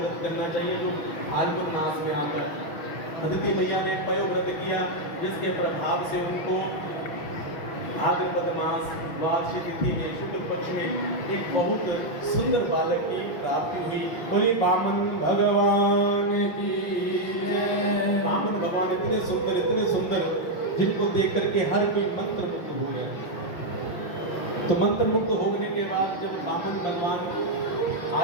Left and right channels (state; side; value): late; right; 5.9 ms